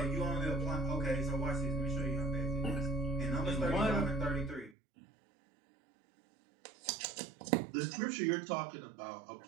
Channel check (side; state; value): left; drops out; at 4.8 s